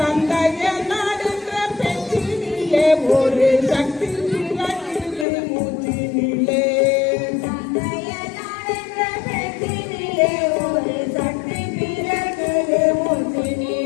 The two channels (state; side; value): drops out; right; at 5.2 s